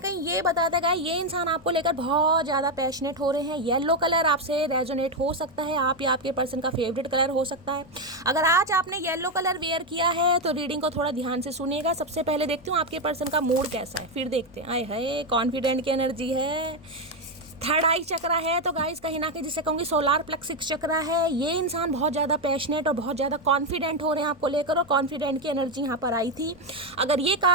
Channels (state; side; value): noise; left; rumble, 27 dB below the sound